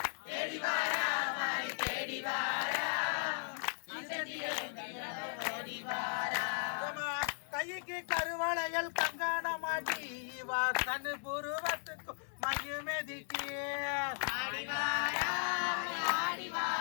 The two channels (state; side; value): silent; right; 53 dB below the other